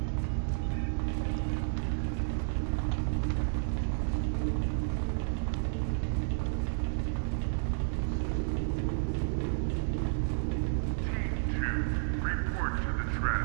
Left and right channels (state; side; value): silent; left; digital silence